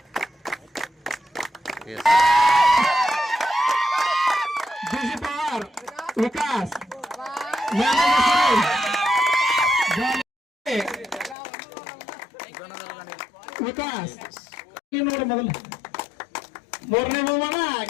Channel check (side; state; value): right; drops out; at 11.4 s